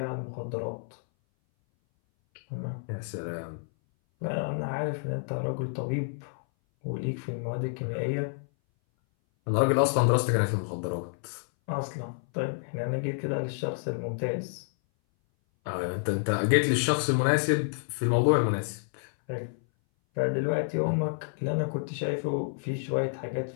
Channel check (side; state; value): right; silent; 58 dB below the other